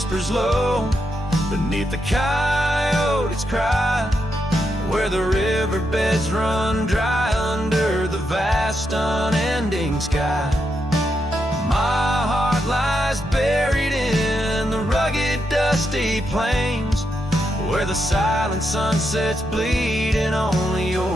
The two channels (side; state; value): both; normal; correlation 0.83